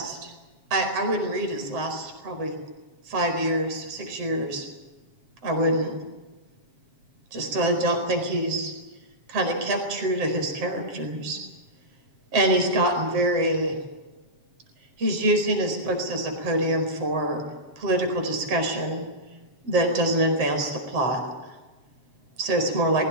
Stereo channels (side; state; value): left; late; 7.4 ms